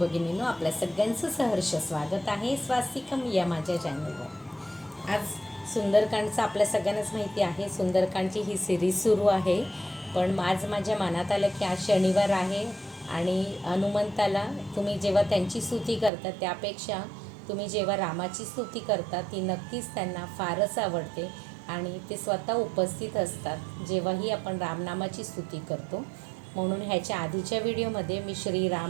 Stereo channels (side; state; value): left; drops out; at 16.1 s